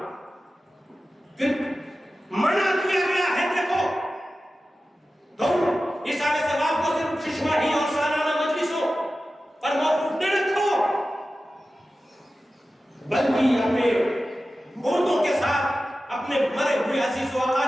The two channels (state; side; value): normal; both; correlation 0.94